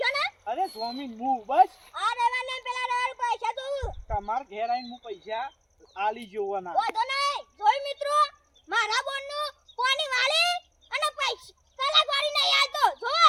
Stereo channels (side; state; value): both; identical; correlation 1.00